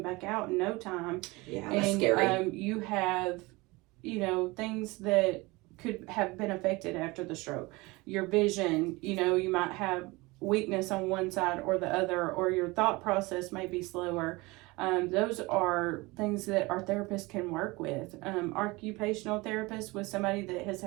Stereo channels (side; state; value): left; quieter; 23.3 dB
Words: back out in no time. Yeah, that's scary. You have, things that could have been affected after the stroke. Your vision, you might have weakness on one side or the other, or your thought process may be slower. Those are things that our therapists can work with. Occupational therapists with somebody that has